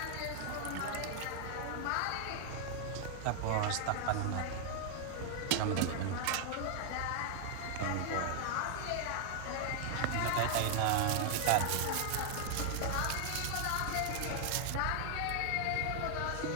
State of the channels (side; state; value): both; different; correlation 0.00